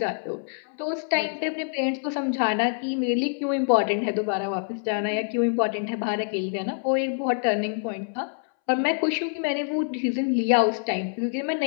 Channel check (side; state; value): right; silent; 61 dB below the other